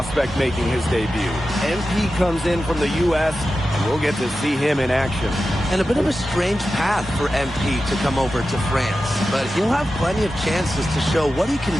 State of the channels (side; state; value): both; normal; correlation 0.92